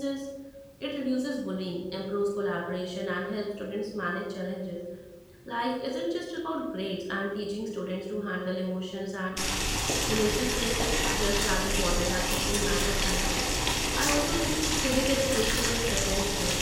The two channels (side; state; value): both; identical; correlation 1.00